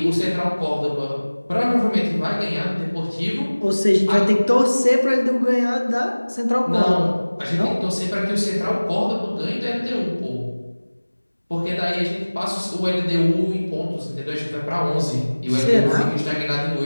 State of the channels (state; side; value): inverted; both; correlation -1.00